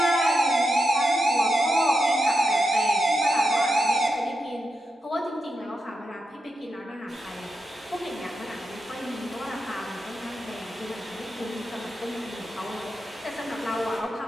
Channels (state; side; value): normal; both; correlation 0.87